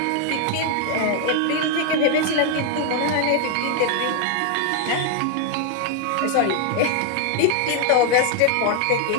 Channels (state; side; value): different; both; correlation 0.00